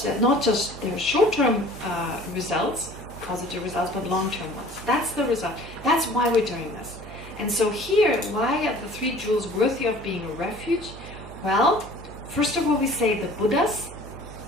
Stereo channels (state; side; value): normal; both; correlation 0.48